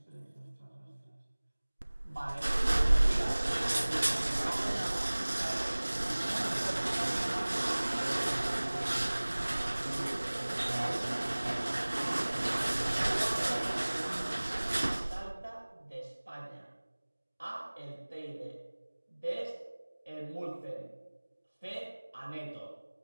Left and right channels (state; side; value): inverted; both; correlation -1.00